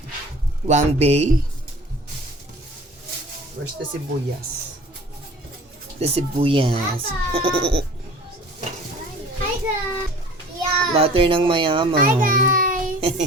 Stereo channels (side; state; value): both; normal; correlation 0.45